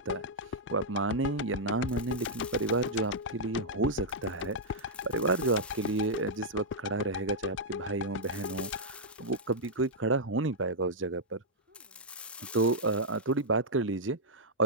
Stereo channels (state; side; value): normal; both; correlation -0.06